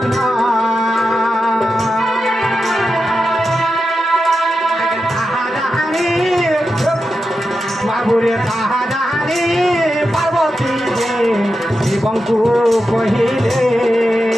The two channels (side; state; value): both; normal; correlation 0.89